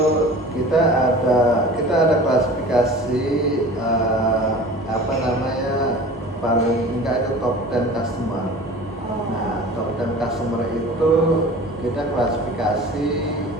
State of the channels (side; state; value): both; normal; correlation 0.40